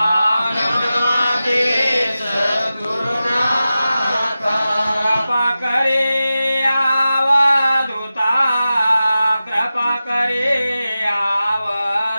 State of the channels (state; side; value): inverted; both; correlation -0.94